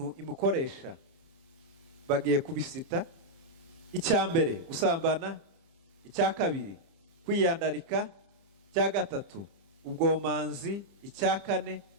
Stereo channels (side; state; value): left; late; 30 ms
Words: imukoresha. Bagiye kubisita. Icya mbere gusambana, icya kabiri kwiyandarika, icya gatatu ubwomanzi, icya kane